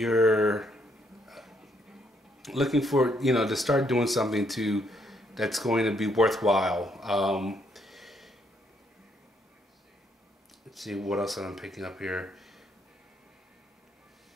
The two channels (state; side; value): normal; both; correlation 0.73